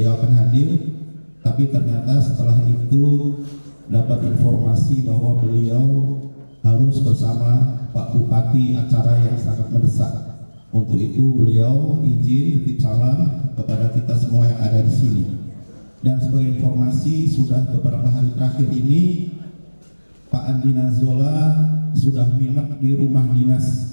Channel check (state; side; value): inverted; both; correlation -1.00